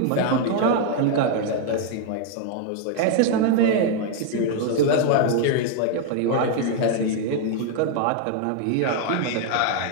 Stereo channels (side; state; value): both; different; correlation 0.00